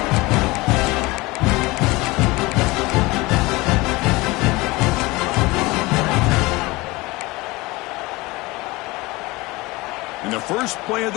And the first play of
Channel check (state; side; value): quieter; right; 22.3 dB